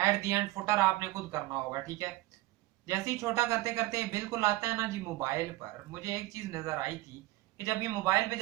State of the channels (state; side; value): quieter; left; 18.2 dB